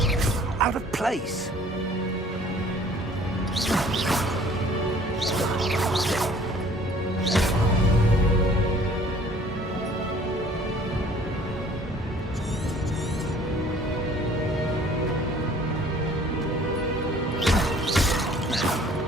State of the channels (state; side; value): normal; both; correlation 0.54